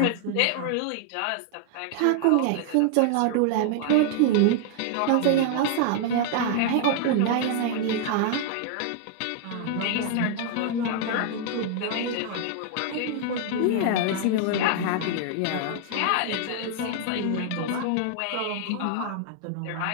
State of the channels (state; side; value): different; both; correlation 0.00